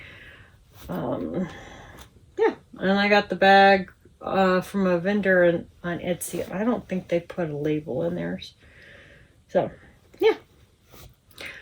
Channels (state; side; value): identical; both; correlation 1.00